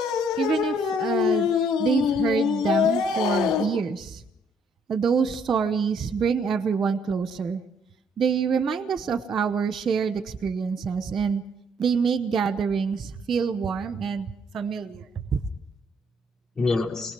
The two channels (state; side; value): normal; both; correlation 0.66